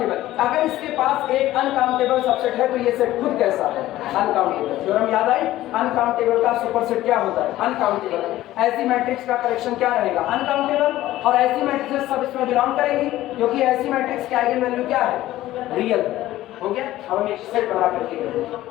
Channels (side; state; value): right; quieter; 15.1 dB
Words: अगर इसके पास एक अनकाउंटेबल सबसेट है तो ये सेट खुद कैसा है? अनकाउंटेबल। थ्योरम याद आई? अनकाउंटेबल का सुपरसेट क्या होता है? अनकाउंटेबल। ऐसी मैट्रिक्स का करेक्शन क्या रहेगा? अनकाउंटेबल। और ऐसी मैट्रिक्स सब इसमें बिलोंग करेंगी, क्योंकि ऐसी मैट्रिक्स की आइगन वैल्यू क्या है? रियल। हो गया। अब हम एक सेट बना करके